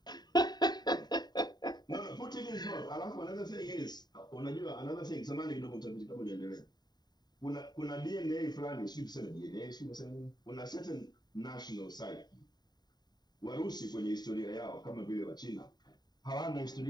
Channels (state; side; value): late; right; 0.20 ms